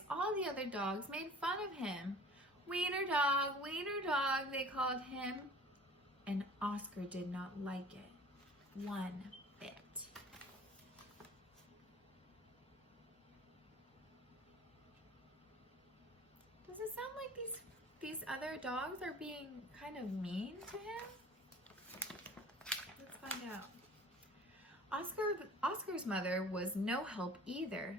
all the other dogs made fun of him. Wiener dog, they called him. And Oscar did not like it one bit. Does it sound like these other dogs are being kind of mean to him? Let's find out. Oscar's mother was no help either.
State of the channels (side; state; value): both; normal; correlation 0.45